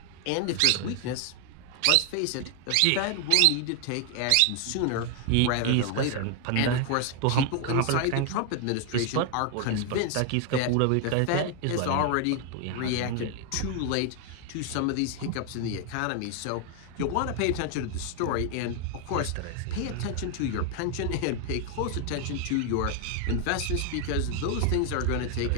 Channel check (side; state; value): both; different; correlation 0.00